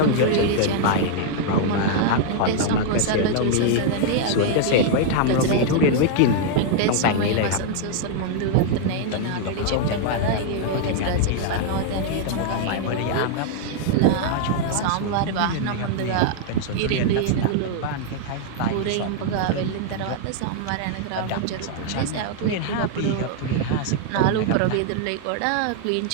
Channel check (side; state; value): both; different; correlation 0.00